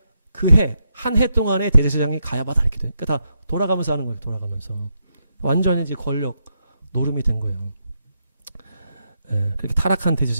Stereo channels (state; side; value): inverted; both; correlation -0.82